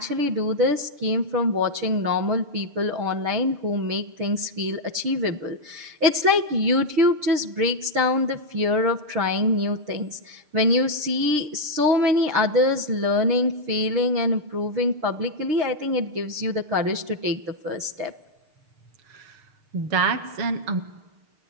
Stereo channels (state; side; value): late; left; 6.6 ms